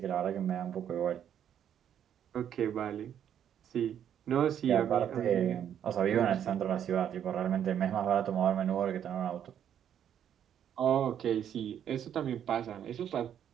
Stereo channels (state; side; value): quieter; left; 9.5 dB